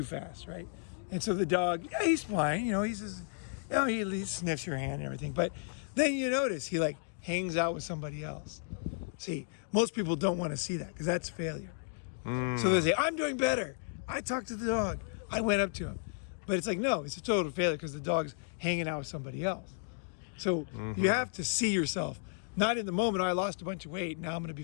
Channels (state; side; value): silent; right; digital silence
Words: fast, right? And so the dog, yeah, he's fine, you know, he's just, you know, he sniffs your hand and everything. But then you notice he like hangs out with somebody else. See, most people don't want to see that because that's failure. So they say, I'm doing better. I talked to the dog. I went up to him. But it's like, no, it's a total failure because the dog's hanging out with somebody else. So you have to see yourself, not in the moment, I lost a bunch of weight, now I'm going to be